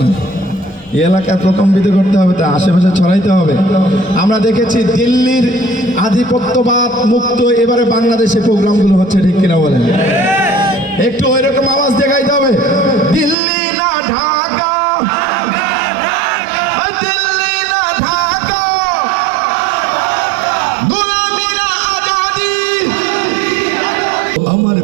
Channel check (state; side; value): drops out; left; at 13.4 s